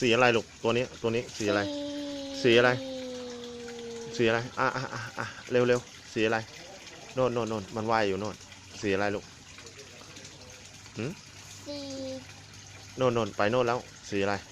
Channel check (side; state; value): both; identical; correlation 1.00